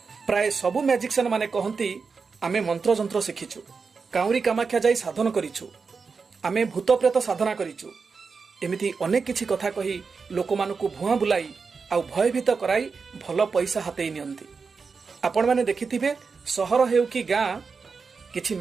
प्राय सबु मैजिशियन माने कहंती आमे मंत्र जंत्र शिखिछु काउरी कामाख्या जाई साधन करिछु आमे भूत प्रेत साधना करिछु एमिति अनेक किछि कथा कही लोक मानकु भुआ बुलाई आउ भयभीत कराई भलो पैसा हातेई नियंती। आपण माने देखिथिबे सहर हेउ कि गां किछि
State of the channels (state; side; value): quieter; left; 5.0 dB